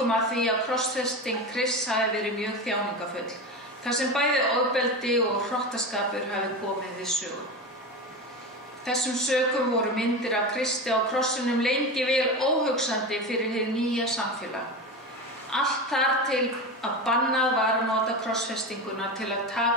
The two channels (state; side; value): normal; both; correlation 0.24